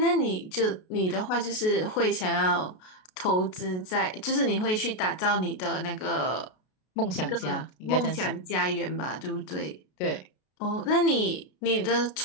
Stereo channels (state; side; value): late; right; 33 ms